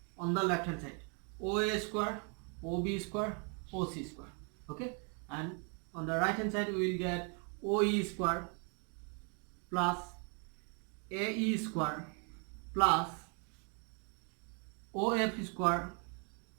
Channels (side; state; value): left; quieter; 37.8 dB